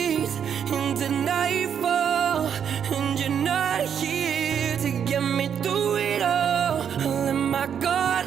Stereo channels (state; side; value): quieter; left; 8.2 dB